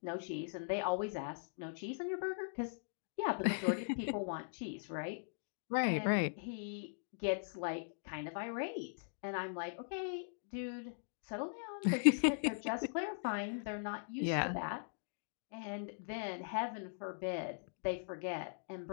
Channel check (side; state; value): right; silent; digital silence